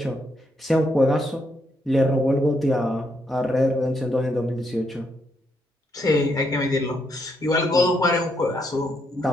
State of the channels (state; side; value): normal; both; correlation 0.77